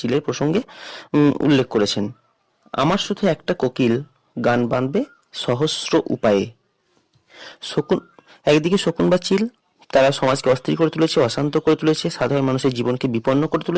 প্রসঙ্গে উল্লেখ করেছেন। আমার শুধু একটা কোকিল গান বাঁধবে সহস্র উপায়ে। শকুন, একদিকে শকুন বা চিল তারা সমাজকে অস্থির করে তুলেছে, অশান্ত করে তুলেছে, সাধারণ মানুষের জীবনকে বিপন্ন করে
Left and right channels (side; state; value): both; identical; correlation 1.00